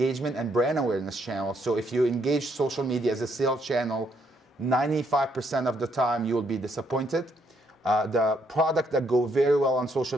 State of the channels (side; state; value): both; normal; correlation 0.72